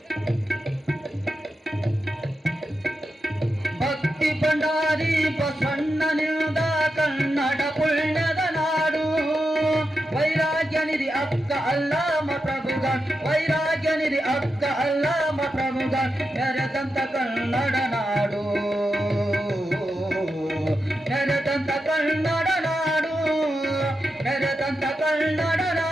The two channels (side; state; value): both; normal; correlation 0.88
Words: ಭಕ್ತಿ ಭಂಡಾರಿ ಬಸವಣ್ಣನಿಂದ ಕನ್ನಡ ಪುಣ್ಯದ ನಾಡು ವೈರಾಗ್ಯ ನಿಧಿ ಅಕ್ಕ ಅಲ್ಲಾಮ ಪ್ರಭುಗನ್ ವೈರಾಗ್ಯ ನಿಧಿ ಅಕ್ಕ ಅಲ್ಲಾಮ ಪ್ರಭುಗನ್ ಮೆರೆದಂತ ಕನ್ನಡ ನಾಡು ಮೆರೆದಂತ ಕನ್ನಡ ನಾಡು ಮೆರೆದಂತ ಕನ್ನಡ